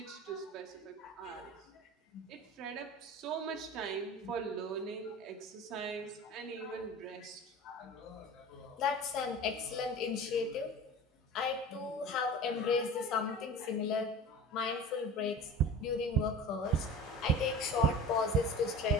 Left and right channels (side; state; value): both; normal; correlation 0.35